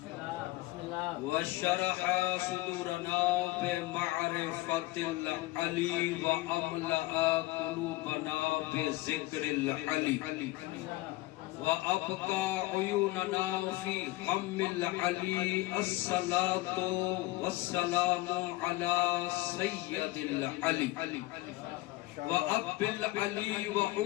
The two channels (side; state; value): right; quieter; 19.3 dB